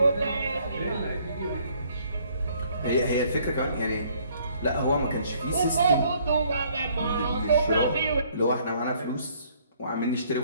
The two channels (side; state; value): both; inverted; correlation -0.63